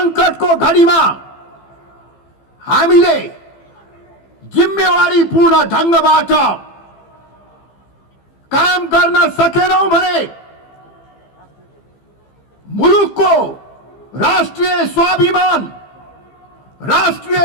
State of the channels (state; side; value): late; right; 15 ms